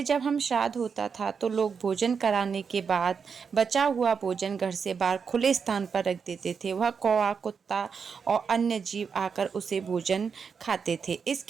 जब हम श्राद्ध होता था तो लोग भोजन कराने के बाद बचा हुआ भोजन घर से बाहर खुले स्थान पर रख देते थे। वह कौवा, कुत्ता और अन्य जीव आकर उसे भोजन खाते थे।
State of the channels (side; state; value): left; quieter; 6.0 dB